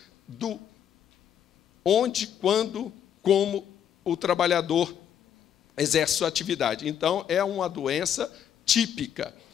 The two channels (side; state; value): right; quieter; 9.3 dB